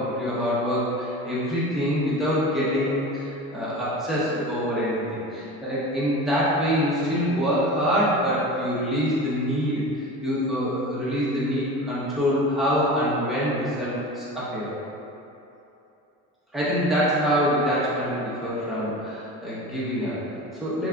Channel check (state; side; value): normal; both; correlation 0.33